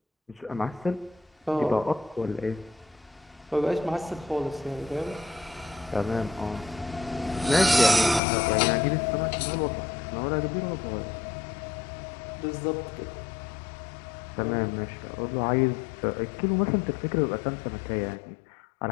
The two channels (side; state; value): right; drops out; at 8.2 s